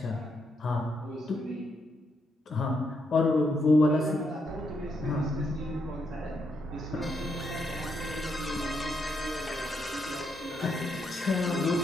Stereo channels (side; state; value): both; normal; correlation 0.78